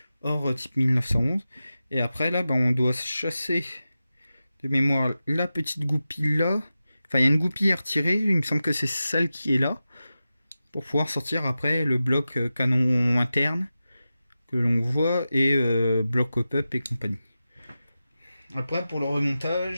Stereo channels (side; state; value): both; inverted; correlation -0.93